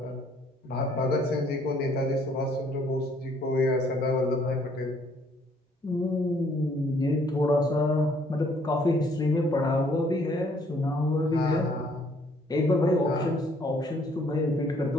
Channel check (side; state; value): both; normal; correlation 0.63